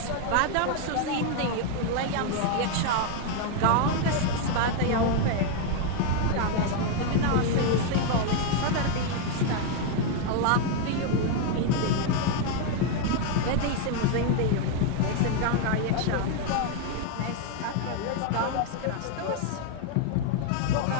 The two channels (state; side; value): different; both; correlation 0.01